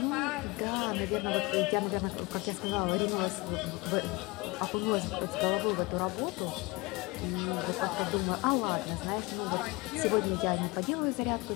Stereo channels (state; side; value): quieter; right; 24.4 dB